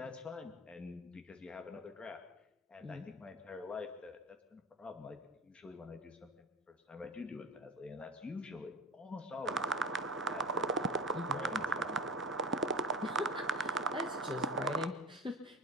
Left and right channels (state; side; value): normal; both; correlation 0.32